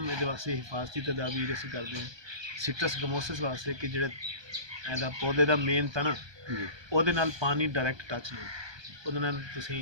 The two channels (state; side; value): late; left; 1.2 ms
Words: ਇਹਦੇ ਵਾਸਤੇ ਹਿਫਾਜ਼ਤੀ ਤਦਾਬੀਰ ਅਸੀਂ ਕਰਦੇ ਹਾਂ ਸਿਟਰਸ ਗਮੋਸਿਸ ਵਾਸਤੇ ਕਿ ਜਿਹੜਾ ਇਹਦਾ ਪੌਦੇ ਦਾ ਮੇਨ ਤਣਾ ਉਹਦੇ ਨਾਲ ਪਾਣੀ ਡਾਇਰੈਕਟ ਟੱਚ ਨਹੀਂ, ਉਹਦੇ ਨਾਲ